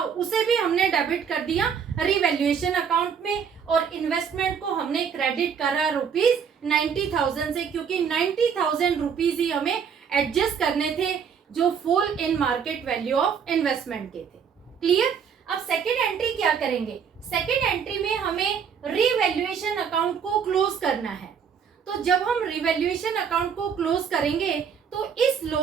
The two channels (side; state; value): left; quieter; 7.1 dB